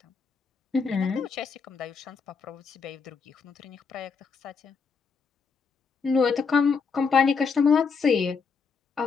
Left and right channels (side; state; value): right; quieter; 5.3 dB